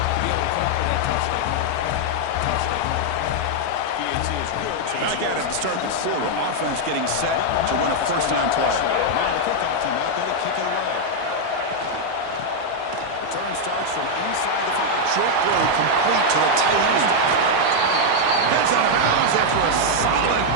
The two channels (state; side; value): different; both; correlation 0.00